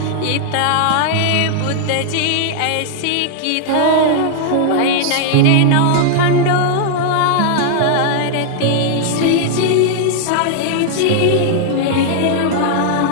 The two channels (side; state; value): both; different; correlation -0.01